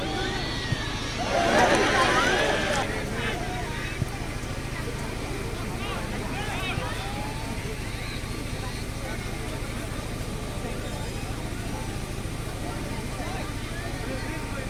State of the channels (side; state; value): both; identical; correlation 1.00